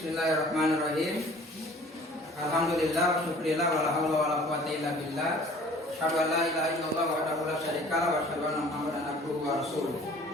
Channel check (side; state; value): both; normal; correlation 0.50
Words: Alhamdulillah wa syukurillah wa la haula wa la quwwata illa billah. Asyhadu an la ilaha illallah wahdahu la syarika lahu wa asyhadu anna Muhammadan abduhu wa rasuluh.